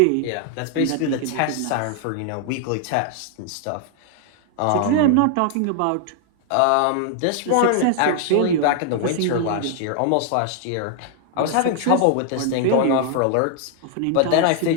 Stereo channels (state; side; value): different; both; correlation 0.00